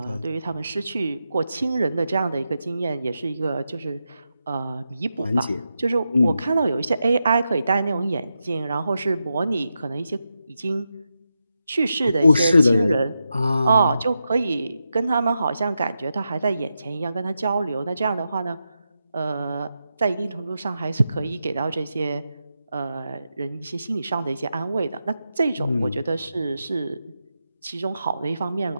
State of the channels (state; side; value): inverted; both; correlation -0.88